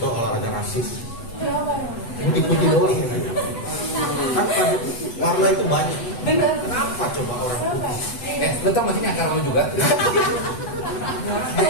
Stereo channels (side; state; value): right; late; 8.1 ms